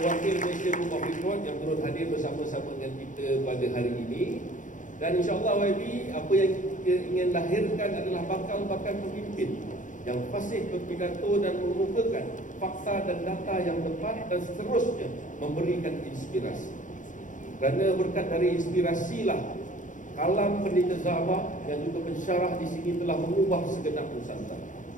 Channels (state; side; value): late; right; 0.37 ms